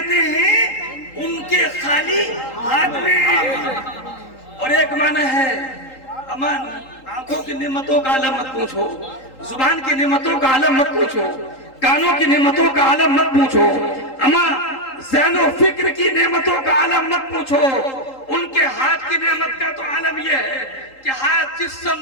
ہیں ان کے خالی ہاتھ میں. اور ایک معنی ہے امان آنکھوں کی نعمتوں کا عالم مت پوچھو, زبان کی نعمتوں کا عالم مت پوچھو, کانوں کی نعمتوں کا عالم مت پوچھو, اما ذہن و فکر کی نعمتوں کا عالم مت پوچھو. ان کے ہاتھ کی نعمت کا تو عالم یہ ہے کہ ہاتھ جس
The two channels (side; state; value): right; late; 3.8 ms